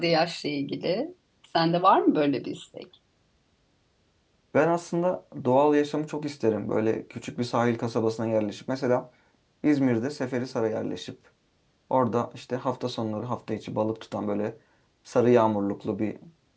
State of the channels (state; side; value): identical; both; correlation 1.00